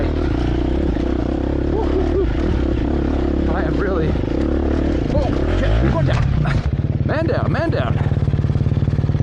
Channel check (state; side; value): identical; both; correlation 1.00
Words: Woo-hoo-hoo. I am really. Oh shit, we're going down. Man down, man down.